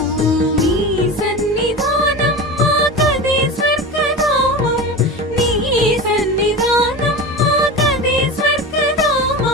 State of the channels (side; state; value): both; normal; correlation 0.28